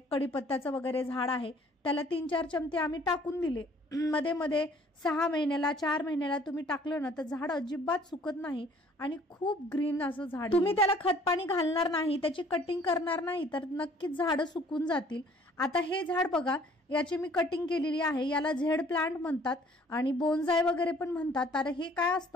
कढीपत्त्याचं वगैरे झाड आहे त्याला 3-4 चमचे आम्ही टाकून दिले। मध्ये मध्ये 6 महिन्याला 4 महिन्याला तुम्ही टाकलं ना तर झाड अजिबात सुकत नाही आणि खूप ग्रीन असं झाड। तुम्ही त्याला खत पाणी घालणार नाही, त्याची कटिंग करणार नाही तर नक्कीच झाडं सुकून जातील। आता हे झाड बघा, याची मी कटिंग केलेली आहे, याला झेड प्लांट म्हणतात आणि बोन्साय वगैरे पण म्हणतात। तर हे काय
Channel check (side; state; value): both; normal; correlation 0.56